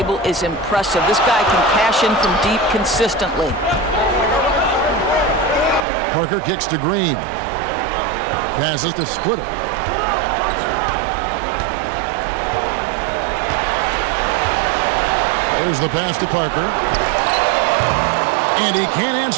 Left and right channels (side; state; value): left; drops out; at 5.9 s